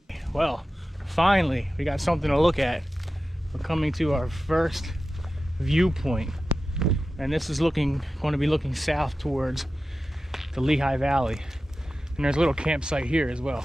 Well, finally, we got something to look at. We're coming to our first viewpoint, and this is going to be looking south towards the Lehigh Valley. And there's a little campsite here as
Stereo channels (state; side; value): normal; both; correlation 0.93